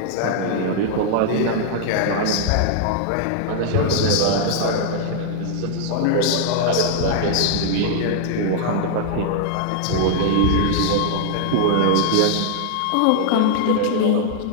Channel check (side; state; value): both; different; correlation -0.01